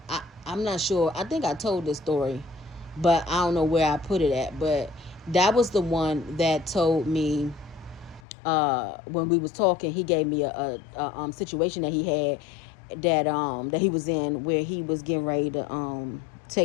I'm not sure, I think I told this story, but I don't know where I put it at. But that was the one that told me, when we was talking, he gave me a situation that he had, that he was in, where he was getting ready to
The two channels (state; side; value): drops out; right; at 8.2 s